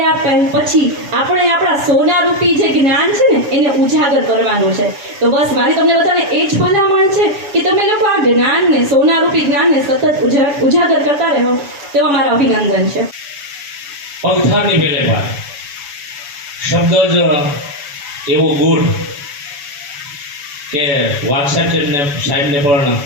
પછી આપણે આપણા સોનારૂપી જે જ્ઞાન છે ને એને ઉજાગર કરવાનું છે. તો બસ મારી તમને બધાને એ જ ભલામણ છે કે તમે લોકો આ જ્ઞાનને, સોનારૂપી જ્ઞાનને સતત ઉજાગર કરતા રહો, તેવો મારો અભિનંદન છે. પગથારની મેલે પાર શબ્દ જ એવો ગુણ કે વાત્સલ્યને સાહેબને પણ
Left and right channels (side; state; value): left; late; 7.0 ms